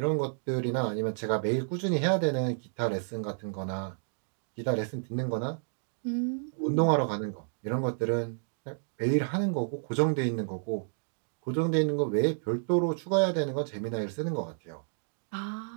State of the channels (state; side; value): silent; left; digital silence